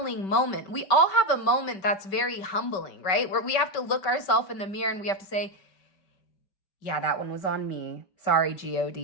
moment. We all have a moment that's very humbling, right? Where we have to look ourselves in the mirror and we have to say, yeah, that one was on me. Sorry,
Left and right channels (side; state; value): right; late; 5.2 ms